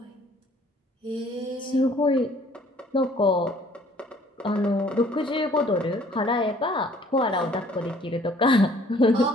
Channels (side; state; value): both; normal; correlation 0.57